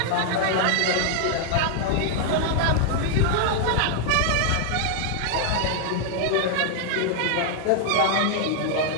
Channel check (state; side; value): different; both; correlation 0.00